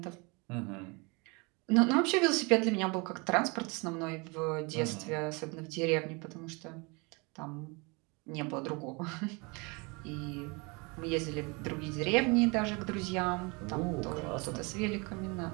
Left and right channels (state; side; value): quieter; left; 28.9 dB